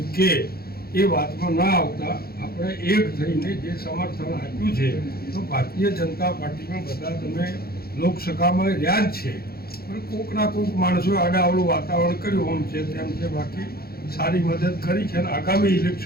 કે એ વાતમાં ના આવતા આપણે એક થઈને જે સમર્થન આપ્યું છે, તો ભારતીય જનતા પાર્ટીમાં બધા તમે લોકસભામાં રહ્યા જ છે, પણ કોકના કોક માણસોએ આડાઅવળું વાતાવરણ કર્યું આમ છે તેમ છે, બાકી સારી મદદ કરી છે. અને આગામી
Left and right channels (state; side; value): late; right; 0.44 ms